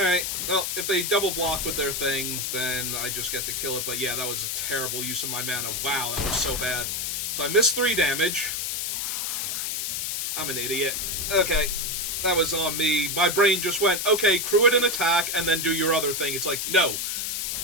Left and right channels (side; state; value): left; noise; hiss, 1 dB below the sound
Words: well, if they double block with their thing, then I just get to kill it. But yeah, that was a terrible use of my mana. Wow, that was so bad. So I missed 3 damage. I'm an idiot. Okay, that was on me. My brain just went, okay, crew it an attack, and then do your other thing. It's like, no. You're